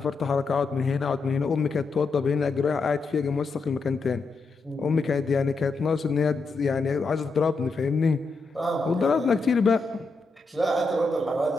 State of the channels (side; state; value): right; quieter; 3.8 dB